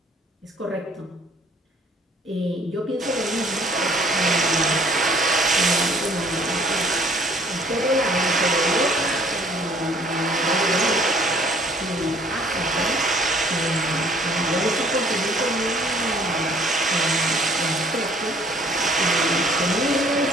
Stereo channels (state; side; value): normal; both; correlation 0.58